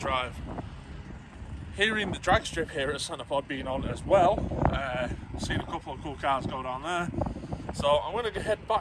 Hearing the drag strip here at Centerpod being on as well, seen a couple of cool cars go down there. So I'm going to head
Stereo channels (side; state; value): both; identical; correlation 1.00